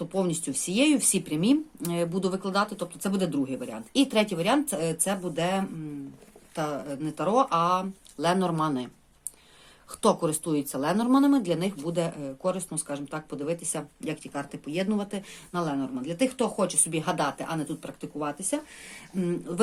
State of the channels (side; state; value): both; identical; correlation 1.00